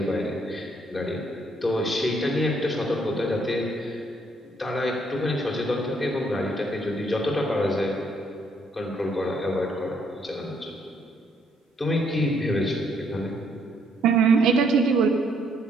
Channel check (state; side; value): normal; both; correlation 0.69